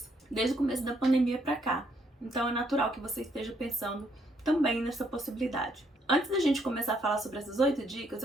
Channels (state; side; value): normal; both; correlation 0.71